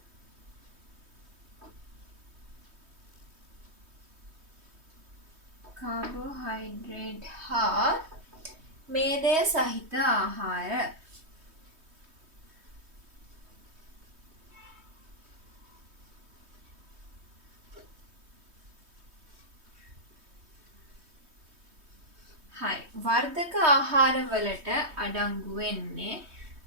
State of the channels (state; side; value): late; left; 3.2 ms